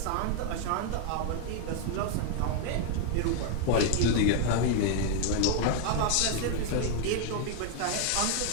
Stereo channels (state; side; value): different; both; correlation 0.01